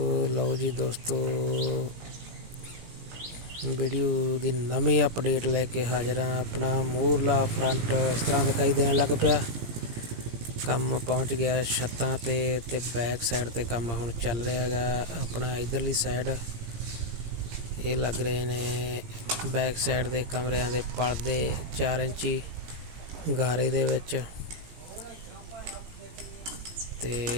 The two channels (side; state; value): left; late; 17 ms